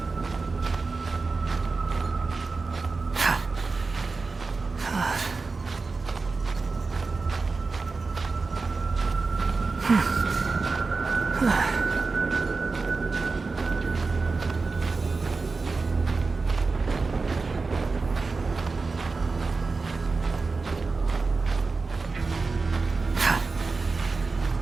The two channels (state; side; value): quieter; left; 4.1 dB